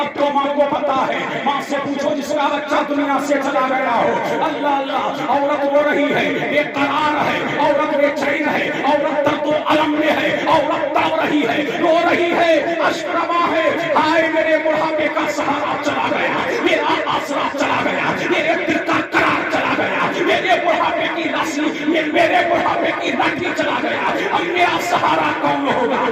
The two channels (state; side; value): identical; both; correlation 1.00